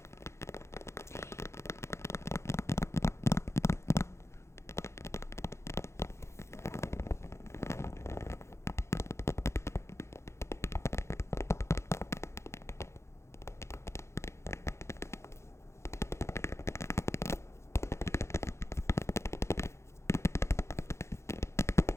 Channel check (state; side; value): late; right; 0.13 ms